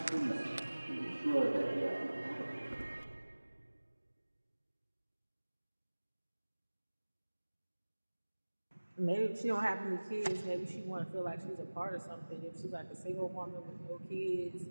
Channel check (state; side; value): inverted; both; correlation -1.00